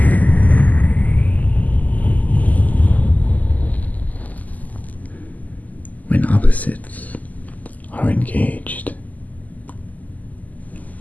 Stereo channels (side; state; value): right; late; 0.079 ms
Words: When opposites are engaged,